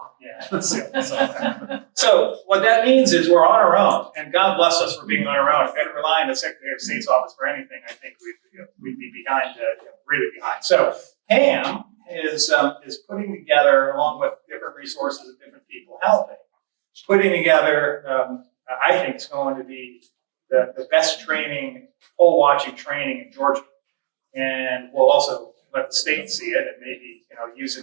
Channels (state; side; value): silent; left; digital silence